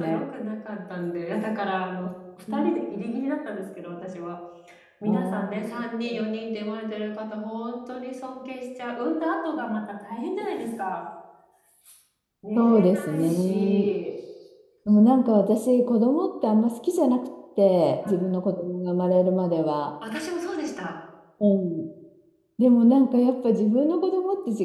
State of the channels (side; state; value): both; identical; correlation 1.00